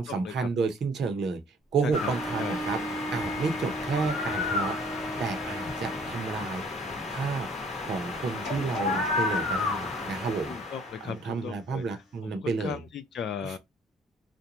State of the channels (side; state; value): both; normal; correlation 0.57